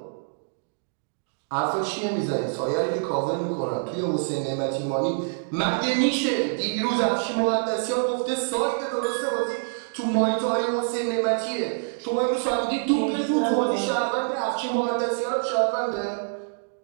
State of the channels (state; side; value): silent; left; digital silence